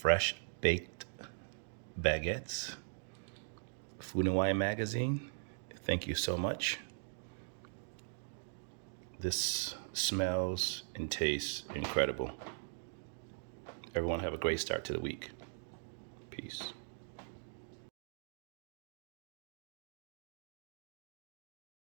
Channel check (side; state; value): left; silent; digital silence